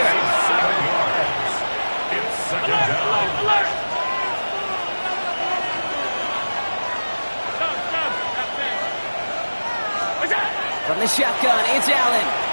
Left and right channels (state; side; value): inverted; both; correlation -1.00